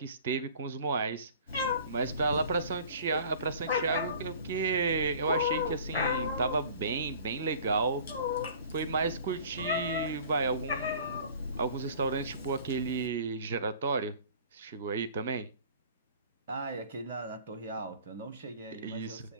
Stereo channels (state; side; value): inverted; both; correlation -0.47